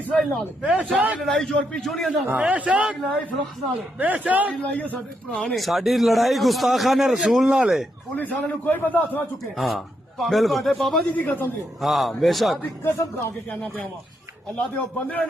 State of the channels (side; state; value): both; normal; correlation 0.80